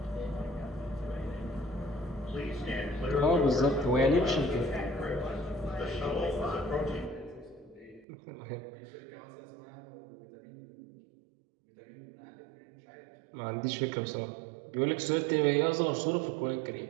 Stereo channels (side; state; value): left; drops out; at 8.1 s